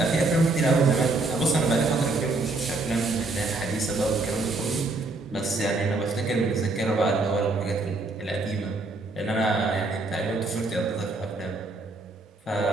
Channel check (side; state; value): left; quieter; 3.3 dB